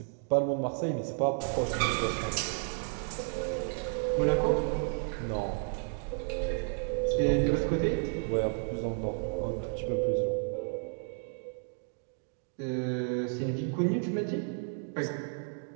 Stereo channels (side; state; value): left; silent; 56 dB below the other